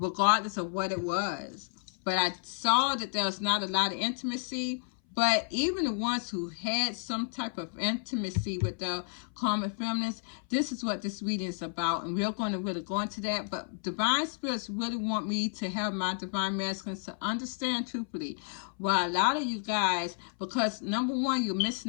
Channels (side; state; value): right; silent; 57 dB below the other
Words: of what it was. But I saw that there was not a lot of intimacy. But even the ones who had some type of intimacy with the karmic feminines, this is what this reading is about. And we're going to really go into that. But divine spirits really want me to have my divine masculines to understand truthfully why a lot of you guys, because number one, you're